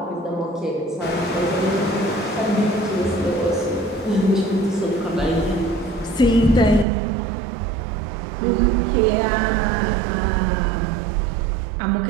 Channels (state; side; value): drops out; left; at 6.9 s